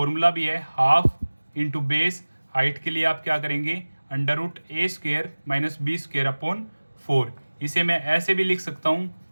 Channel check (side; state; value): both; inverted; correlation -1.00